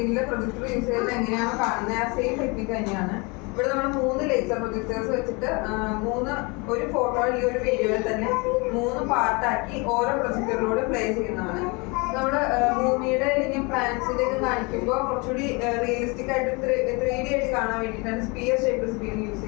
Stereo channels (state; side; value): quieter; right; 28.7 dB